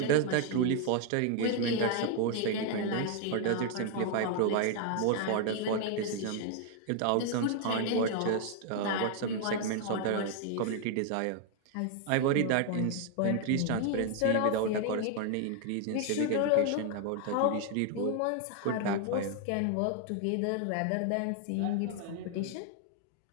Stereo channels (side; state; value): both; different; correlation 0.00